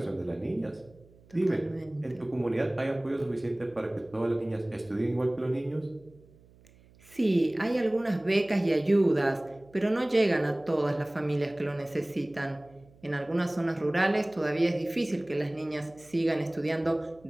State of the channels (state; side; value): noise; right; hum, 27 dB below the sound